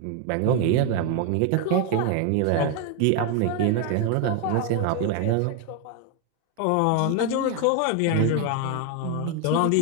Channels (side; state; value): both; different; correlation 0.01